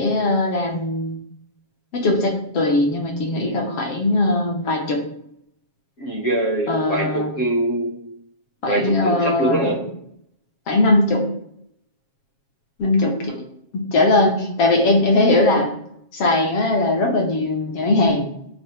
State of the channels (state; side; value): late; right; 7.4 ms